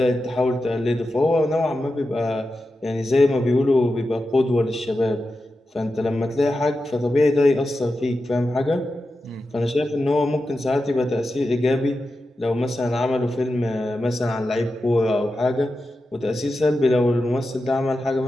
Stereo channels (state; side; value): normal; both; correlation 0.91